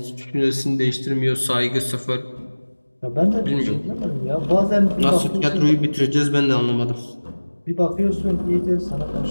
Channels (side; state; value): both; inverted; correlation -1.00